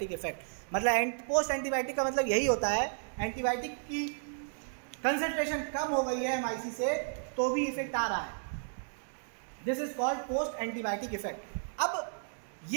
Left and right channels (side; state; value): left; silent; digital silence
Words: effect. मतलब पोस्ट एंटीबायोटिक का मतलब यही होता है, एंटीबायोटिक की कंसंट्रेशन कम हो गई है MIC से तो भी इफेक्ट आ रहा है, this is called post antibiotic effect. अब